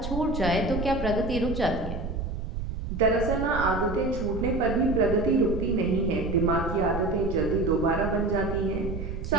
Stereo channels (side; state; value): right; noise; rumble, 5 dB below the sound